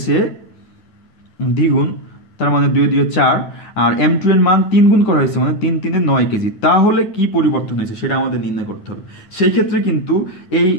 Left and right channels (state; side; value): late; right; 9.6 ms